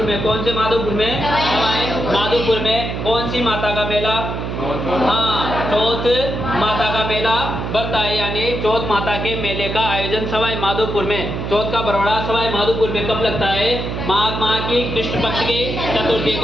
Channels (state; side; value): noise; right; hum, 4 dB below the sound